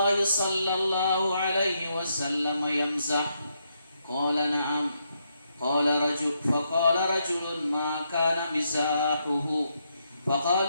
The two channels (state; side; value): inverted; both; correlation -0.79